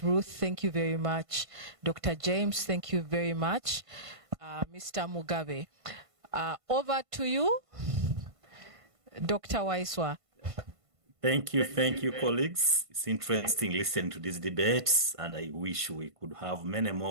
Ruth, thank you very much. Dr. James, thank you very much. Mr. Mugabe, over to you, Dr. Waiswa. Thank you, colleagues. It's interesting listening to these debates, and I wish we could have many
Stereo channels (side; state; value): left; late; 1.5 ms